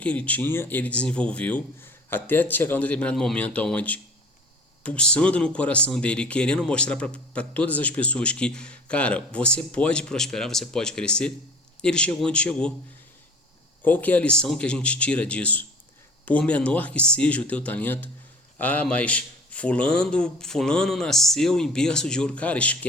ele tinha, ele desenvolveu até chegar a um determinado momento onde, pulsando no coração dele, querendo mostrar para todas as pessoas que, cara, você pode prosperar, você pode crescer, ele chegou onde chegou. Qual que é a lição que a gente tira disso? Por menor que seja o teu talento, mas fulano nasceu em berço de ouro. Cara,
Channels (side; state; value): both; normal; correlation 0.45